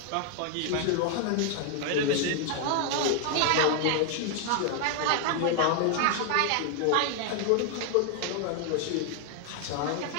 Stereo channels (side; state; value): both; different; correlation 0.00